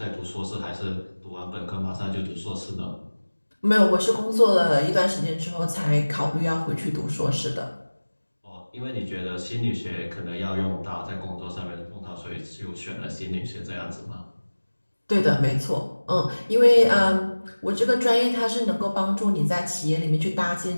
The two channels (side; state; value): both; inverted; correlation -1.00